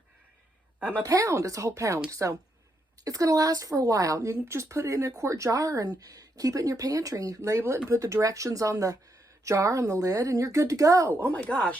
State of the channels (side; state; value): both; normal; correlation 0.79